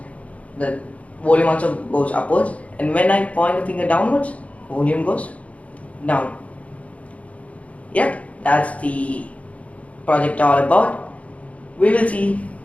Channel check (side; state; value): right; late; 0.066 ms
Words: the volume also goes upwards, and when I point the finger downwards, volume goes down. Yep, that's the project all about. We will see